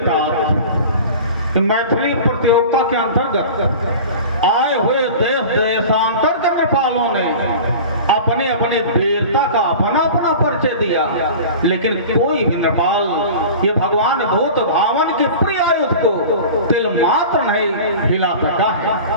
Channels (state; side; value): inverted; both; correlation -0.37